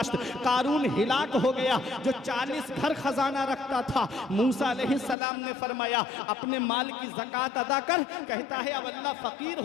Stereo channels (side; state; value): right; drops out; at 5.2 s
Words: कारून हिलाक हो गया जो 40 घर खजाना रखता था। मूसा अलैहिस्सलाम ने फरमाया अपने माल की ज़कात अदा कर। कहता है अब अल्लाह फकीर